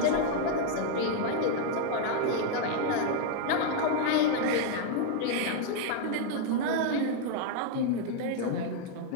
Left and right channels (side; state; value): both; different; correlation 0.00